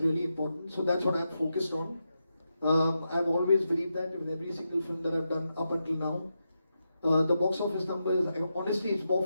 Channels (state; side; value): inverted; both; correlation -0.87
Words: really important. So that's what I'm focused on. I've always believed that with every single film that I've done up until now. The box office number is, honestly, it's more